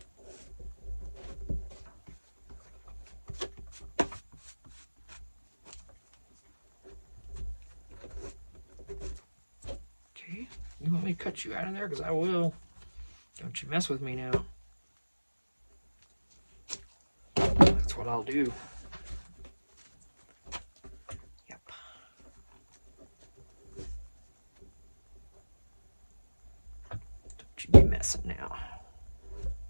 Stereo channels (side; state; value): both; inverted; correlation -1.00